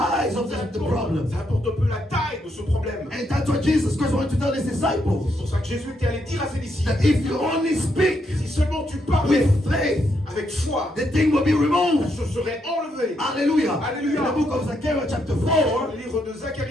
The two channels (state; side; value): normal; both; correlation 0.78